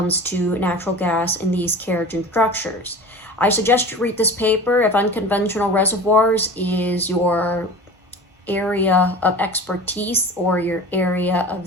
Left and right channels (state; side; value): normal; both; correlation 0.36